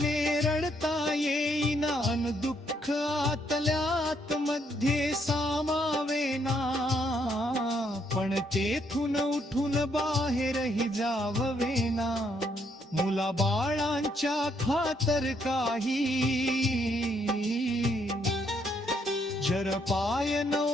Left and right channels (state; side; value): normal; both; correlation 0.72